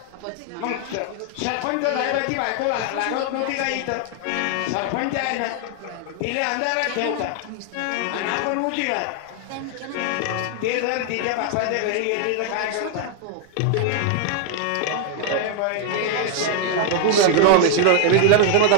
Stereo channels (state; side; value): different; both; correlation 0.00